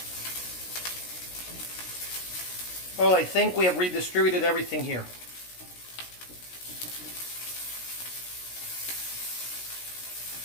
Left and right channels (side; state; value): right; late; 16 ms